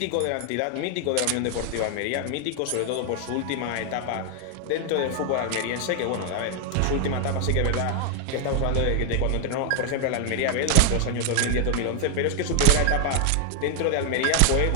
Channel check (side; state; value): both; different; correlation 0.00